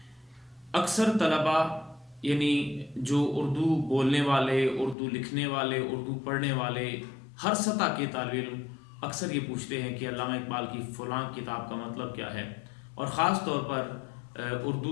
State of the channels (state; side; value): drops out; right; at 5.0 s